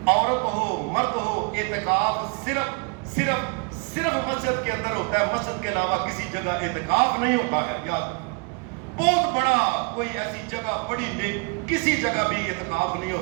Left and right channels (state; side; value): quieter; left; 32.6 dB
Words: عورت ہو مرد ہو، اعتکاف صرف مسجد کے اندر ہوتا ہے، مسجد کے علاوہ کسی جگہ اعتکاف نہیں ہوتا ہے۔ یاد بہت بڑا کوئی ایسی جگہ بڑی نہیں، کسی جگہ بھی اعتکاف نہیں